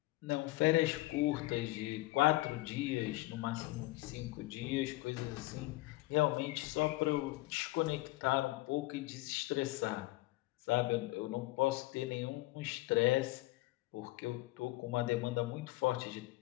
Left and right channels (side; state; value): right; quieter; 19.7 dB